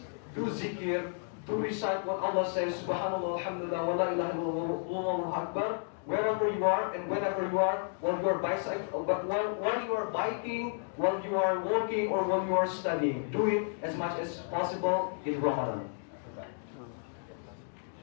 do zikir, do recite what Allah says, Subhanallah, Alhamdulillah, wa la ilaha illallah, Allahu Akbar, wherever you are and whenever you are, while you are while you are biking, while you are walking, or while you are studying. Do it as much as possible in Ramadan.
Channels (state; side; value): silent; right; digital silence